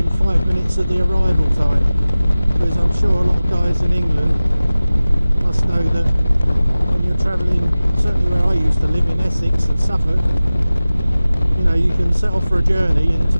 5 minutes of the arrival time. Because I'm sure a lot of guys in England must know that when you're travelling, certainly where I used to live in Essex and Suffolk, you know, you can set off for a journey and to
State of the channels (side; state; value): both; inverted; correlation -0.97